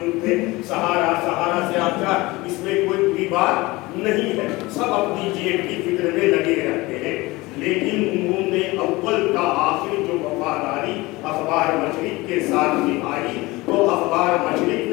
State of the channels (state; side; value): quieter; right; 21.5 dB